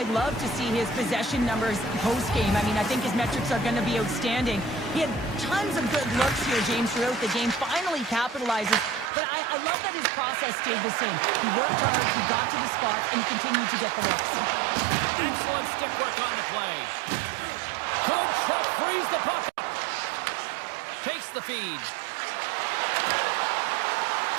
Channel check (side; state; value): left; drops out; at 9.1 s